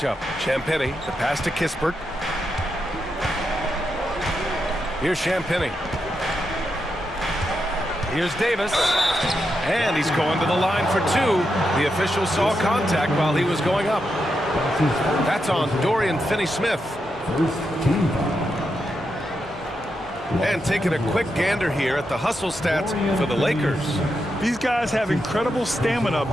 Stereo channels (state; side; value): normal; both; correlation 0.85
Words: Champagnie, the pass to Kispert. Here's Champagnie. Here's Davis. And he's going to the line for 2. The official saw contact while he was going up. That's on Dorian Finney-Smith. First team foul. And taking a quick gander here at the hustle stats for the Lakers. These guys have incredible stamina